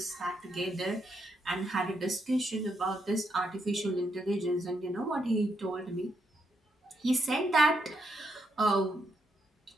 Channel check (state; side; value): normal; both; correlation 0.79